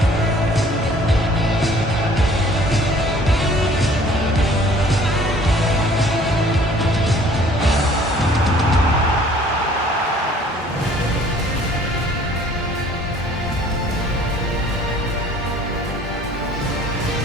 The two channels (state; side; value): normal; both; correlation 0.54